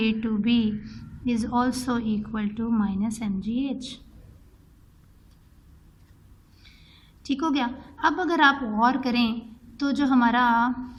to B is also equal to minus M G H. ठीक हो गया। अब अगर आप गौर करें तो जो हमारा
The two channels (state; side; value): identical; both; correlation 1.00